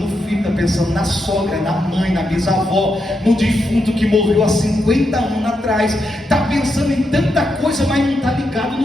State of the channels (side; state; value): both; normal; correlation 0.83